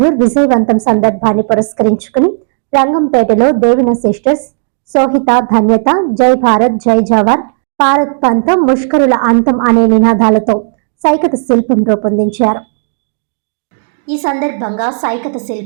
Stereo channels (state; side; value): silent; left; digital silence